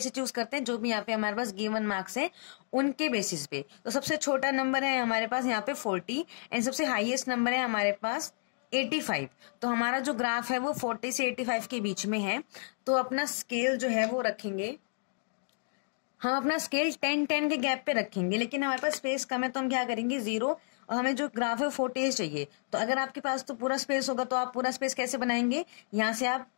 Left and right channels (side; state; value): right; silent; digital silence